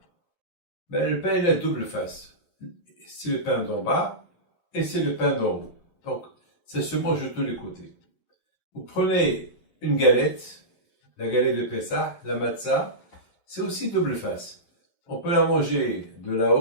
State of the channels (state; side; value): late; right; 11 ms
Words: le pain il a double face. C'est le pain d'en bas et c'est le pain d'en haut. Donc, ça se mange de tous les côtés. Vous prenez une galette, la galette de Pessah, la matzah, c'est aussi double face. On peut la manger de